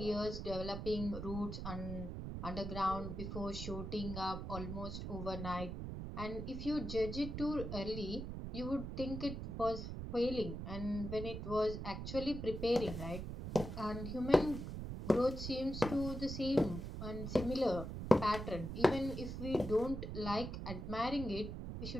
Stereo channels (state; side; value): noise; right; rumble, 6 dB below the sound